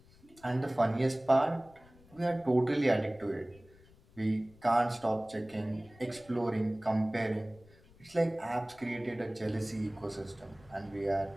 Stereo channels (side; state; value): left; noise; rumble, 26 dB below the sound